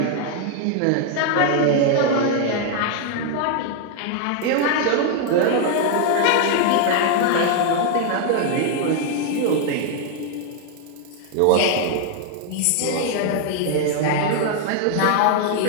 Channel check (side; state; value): both; different; correlation 0.00